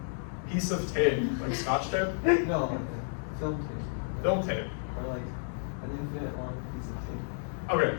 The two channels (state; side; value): silent; right; 57 dB below the other